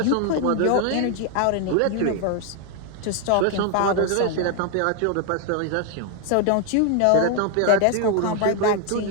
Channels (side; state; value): both; different; correlation 0.00